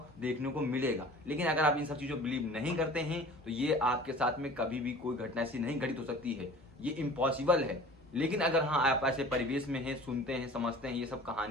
देखने को मिलेगा। लेकिन अगर आप इन सब चीजों बिलीव नहीं करते हैं तो ये आपके साथ में कभी भी कोई घटना ऐसी नहीं घटित हो सकती है, ये इम्पॉसिबल है। लेकिन अगर हाँ आप ऐसे परिवेश में हैं, सुनते हैं, समझते हैं ये सब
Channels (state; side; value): normal; both; correlation 0.43